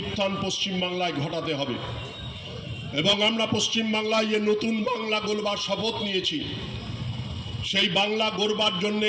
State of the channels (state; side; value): identical; both; correlation 1.00